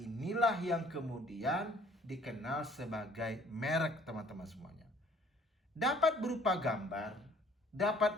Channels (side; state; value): both; normal; correlation 0.57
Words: yang kemudian dikenal sebagai merek, teman-teman semuanya. Dapat berupa gambar,